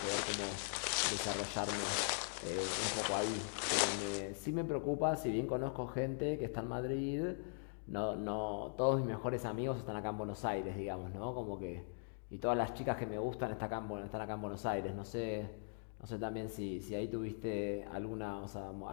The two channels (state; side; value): silent; right; digital silence